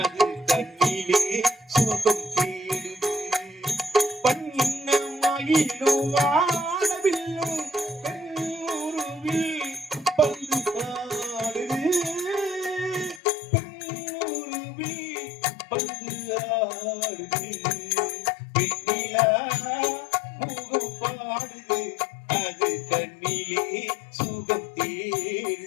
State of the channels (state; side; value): drops out; right; at 13.2 s